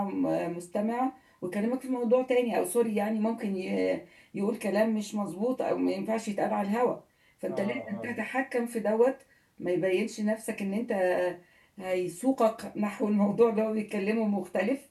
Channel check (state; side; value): identical; both; correlation 1.00